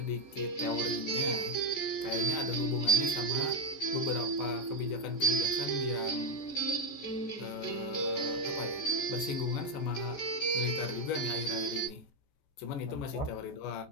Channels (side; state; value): right; late; 14 ms